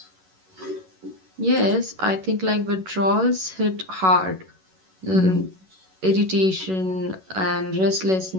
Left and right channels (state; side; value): late; left; 11 ms